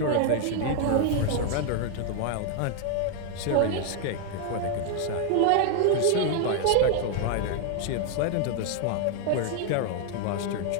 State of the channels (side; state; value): both; different; correlation 0.00